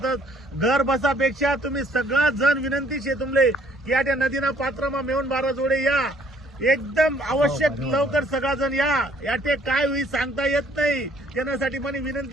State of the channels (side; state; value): both; normal; correlation 0.62